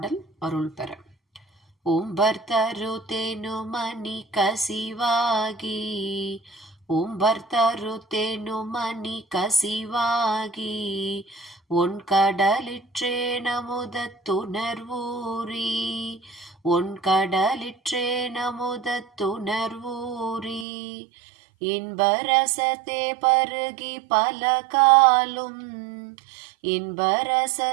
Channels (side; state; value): left; drops out; at 20.7 s